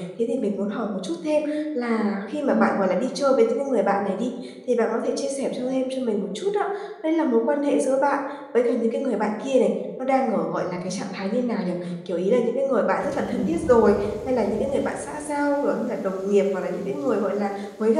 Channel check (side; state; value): both; identical; correlation 1.00